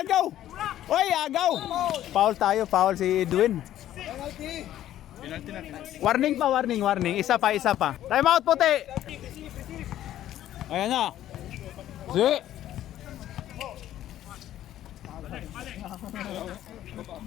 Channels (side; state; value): right; quieter; 12.5 dB